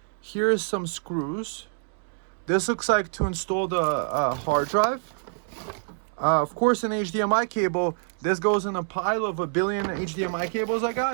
Here's some screws. This looks like to install the hard drive. Of course, an HDMI cable. This goes in a pile of 1 billion HDMI cables I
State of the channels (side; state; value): left; silent; digital silence